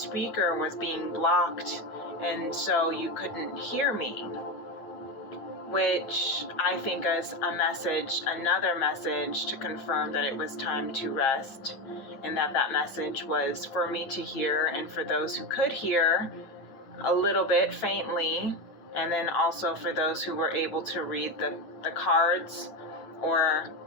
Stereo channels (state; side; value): late; right; 8.9 ms